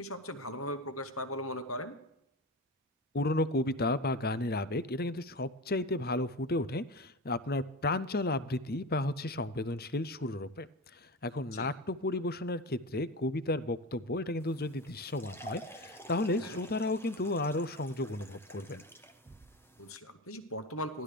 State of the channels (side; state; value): both; normal; correlation 0.26